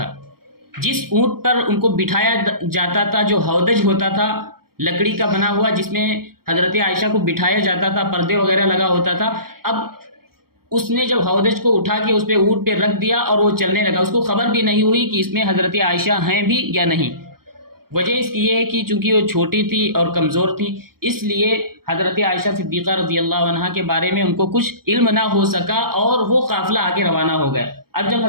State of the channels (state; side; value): late; left; 0.94 ms